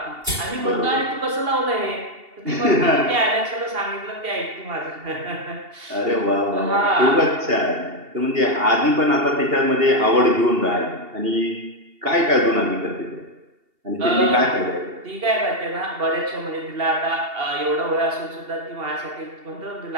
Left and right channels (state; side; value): late; left; 2.8 ms